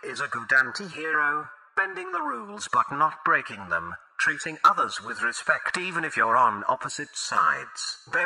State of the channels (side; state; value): both; identical; correlation 1.00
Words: is a good anti-hero, bending the rules but not breaking them, treating others with respect even if you're on opposite sides.